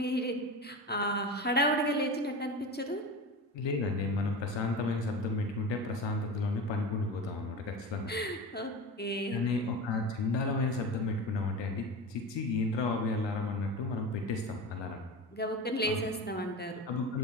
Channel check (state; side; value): normal; both; correlation 0.28